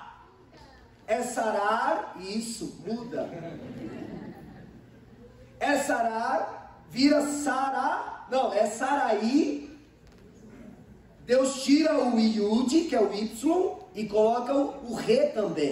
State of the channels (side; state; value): both; identical; correlation 1.00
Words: É Sarar, isso, muda. É Sarar, vira Sará, não, é Saraí. Deus tira o Iud, que é o Y, e coloca o Re